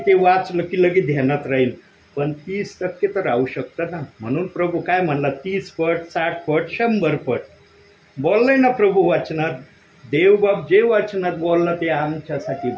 वाचलं की लगेच ध्यानात राहील. पण 30% तर राहू शकतं ना. म्हणून प्रभू काय म्हणला, 30 पट, 60 पट, 100 पट बोललाय ना प्रभू वाचनात. देवबाप जे वाचनात बोलला ते आमच्यासाठी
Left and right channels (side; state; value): both; identical; correlation 1.00